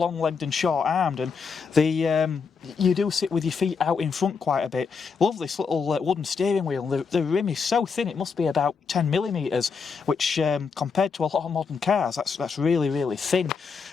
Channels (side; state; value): right; quieter; 5.5 dB